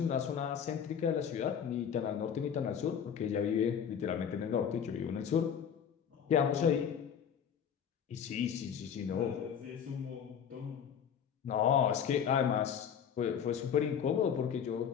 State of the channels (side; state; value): right; quieter; 7.9 dB